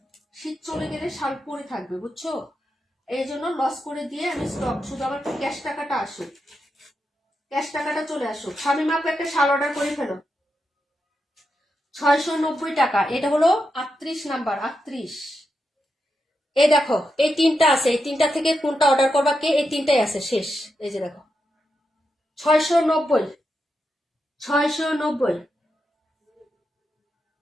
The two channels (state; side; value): normal; both; correlation 0.86